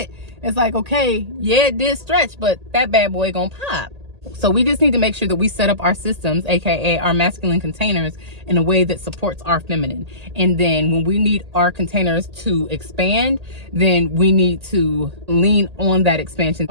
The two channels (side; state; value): left; late; 1.8 ms